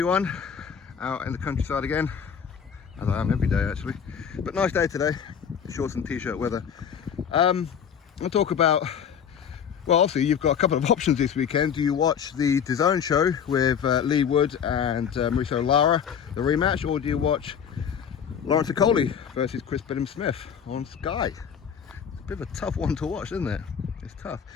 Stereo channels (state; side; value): quieter; right; 7.7 dB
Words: out in the countryside again, as I am every day actually, but nice day today, shorts and t-shirt weather. I'll talk about, well obviously you've got a couple of options this weekend. Do you watch the DAZN show with Lee Wood and Mauricio Lara, the rematch, or do you watch Lawrence Okolie versus Billam-Smith on Sky? It's a bit of a tough one to watch, isn't it? It's tough.